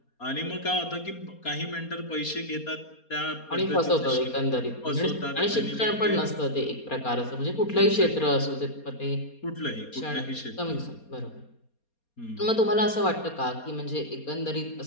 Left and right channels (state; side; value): late; right; 4.3 ms